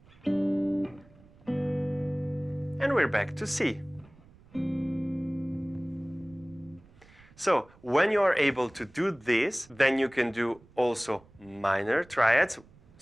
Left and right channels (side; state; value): right; noise; rumble, 26 dB below the sound